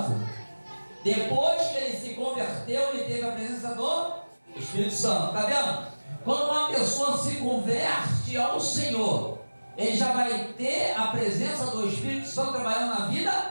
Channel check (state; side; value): inverted; both; correlation -1.00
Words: Depois que ele se converteu, ele teve a presença do Espírito Santo. Está vendo? Quando uma pessoa se converte ao Senhor, ele já vai ter a presença do Espírito Santo trabalhando na